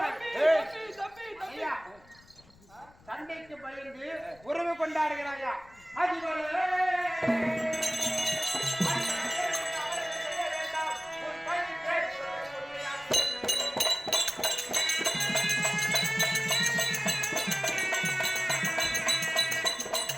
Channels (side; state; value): left; noise; rumble, 27 dB below the sound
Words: சண்டைக்கு பயந்து உறவு கொண்டாடுகிறாயா?